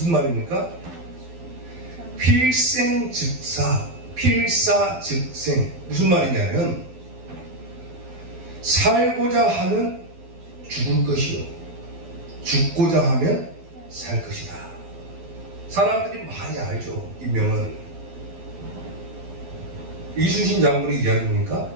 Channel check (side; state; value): left; late; 12 ms